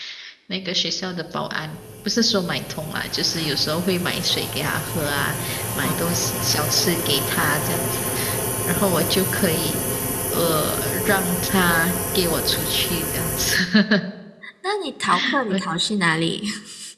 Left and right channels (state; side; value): identical; both; correlation 1.00